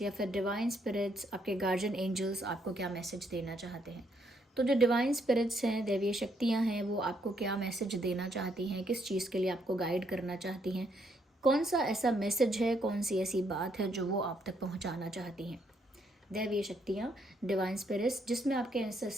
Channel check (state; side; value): normal; both; correlation 0.73